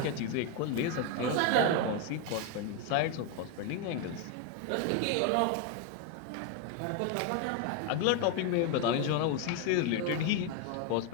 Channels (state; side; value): different; both; correlation 0.01